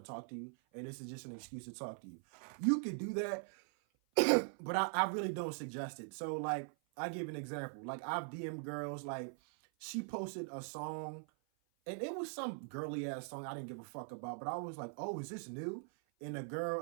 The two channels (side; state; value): left; silent; 50 dB below the other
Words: talk to you, and this is just an excuse to talk to you. You could do that, but I really don't suggest it. So like, I give an example. Like I've DM'd girls, like she posted a song and it was some girly ass song I didn't give a fuck about, but I was like, oh, is this new? And the